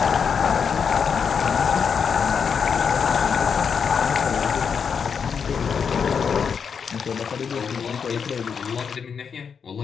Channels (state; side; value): quieter; right; 6.5 dB